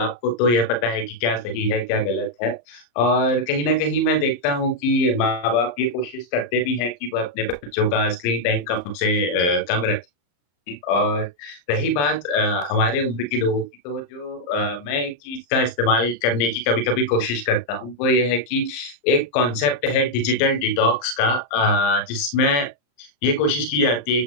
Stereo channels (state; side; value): late; right; 34 ms